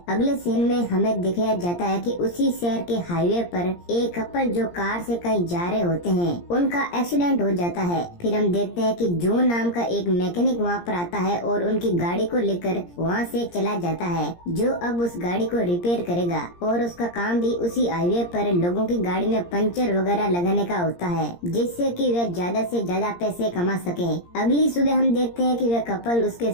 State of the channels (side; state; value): right; late; 17 ms